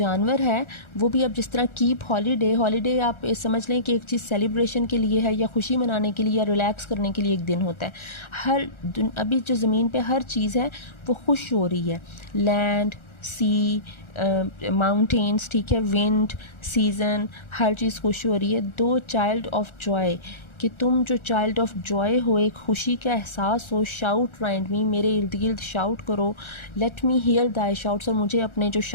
है वो भी अब जिस तरह कीप हॉलीडे आप समझ लें कि एक चीज़ सेलिब्रेशन के लिए है, या खुशी मनाने के लिए, या रिलैक्स करने के लिए एक दिन होता है। अभी जो ज़मीन पे हर चीज़ है वो खुश हो रही है। लैंड, सी, माउंटेन्स, ठीक है, विंड, सीज़न, हर चीज़ खुश हो रही है। दो चाइल्ड ऑफ जॉय, कि तुम जो चाइल्ड ऑफ जॉय हो, एक खुशी का एहसास हो। शाउट राइंड मी, मेरे इर्द गिर्द शाउट करो। Let me here Dai shouts, और मुझे अपने जो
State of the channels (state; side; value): late; right; 1.4 ms